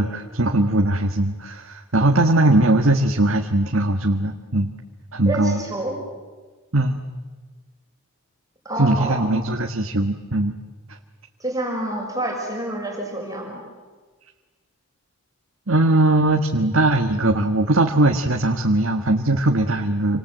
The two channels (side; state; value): both; normal; correlation 0.49